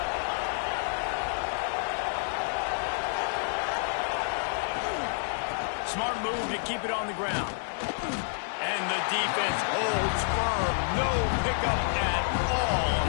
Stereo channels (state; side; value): silent; right; 59 dB below the other